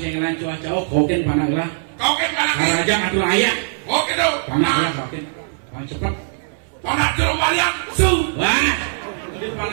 yang lain cuaca? Oh, koken panaglah. Koken panaglah. Raja ngatur ayah. Oke dong. Panaglah koken. Paling cepat. Panak jeruk balian. Wah. Di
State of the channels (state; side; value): silent; left; 61 dB below the other